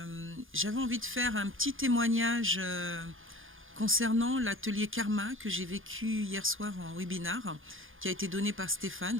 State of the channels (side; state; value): left; late; 0.59 ms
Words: envie de faire un petit témoignage concernant l'atelier Karma que j'ai vécu hier soir en webinar, qui a été donné par